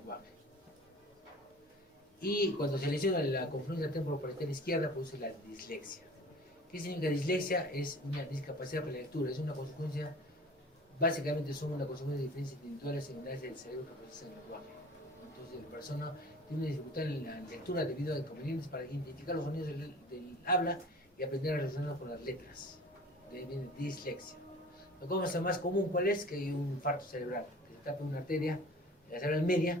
Y cuando se lesiona la confluencia temporoparietal izquierda, produce la dislexia. ¿Qué significa dislexia? Es una discapacidad para la lectura, es una consecuencia, básicamente son una consecuencia de diferencias individuales en unidades del cerebro que procesan el lenguaje. Entonces la persona tiene una dificultad en la lectura debido a inconvenientes para identificar los sonidos del habla y aprender a relacionarlo con las letras. De ahí viene dislexia. La cosa más común, ¿cuál es? Que hay un infarto cerebral, que se tapa una arteria, la cerebral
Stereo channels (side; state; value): both; normal; correlation 0.44